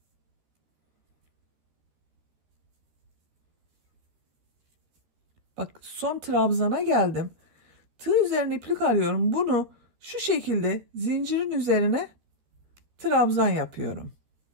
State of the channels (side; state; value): left; late; 13 ms